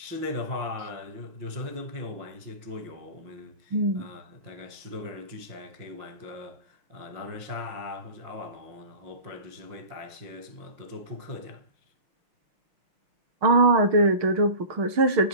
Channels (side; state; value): left; late; 5.7 ms